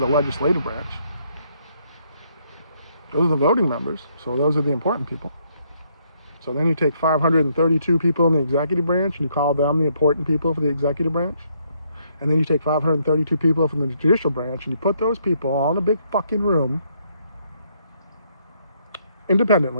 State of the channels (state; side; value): inverted; both; correlation -0.71